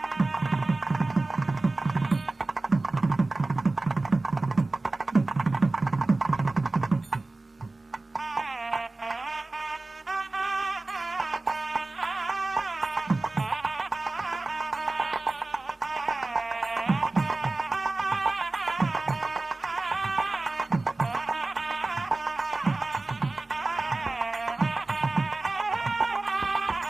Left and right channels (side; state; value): left; quieter; 3.2 dB